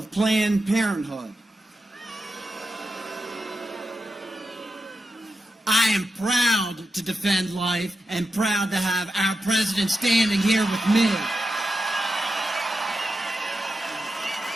Planned Parenthood. I am proud to defend life and proud to have our president standing here with me.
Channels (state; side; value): normal; both; correlation 0.88